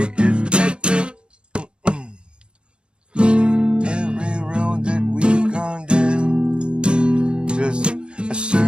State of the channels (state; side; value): late; left; 0.054 ms